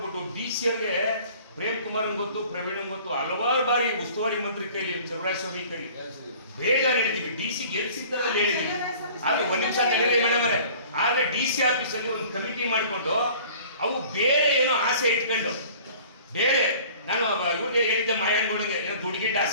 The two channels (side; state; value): both; inverted; correlation -0.48